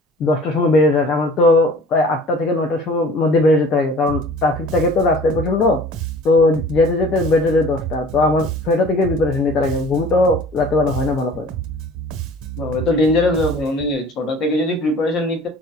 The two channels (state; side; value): normal; both; correlation 0.47